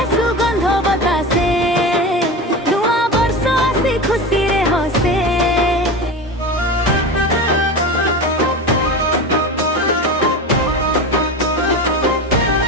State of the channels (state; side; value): normal; both; correlation 0.26